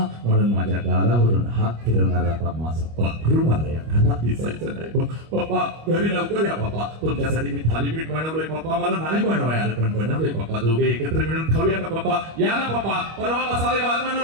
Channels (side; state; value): left; late; 25 ms